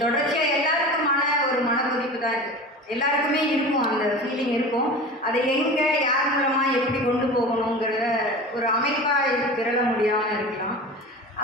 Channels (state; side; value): normal; both; correlation 0.33